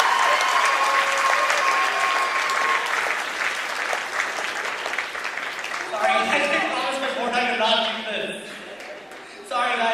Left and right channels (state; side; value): identical; both; correlation 1.00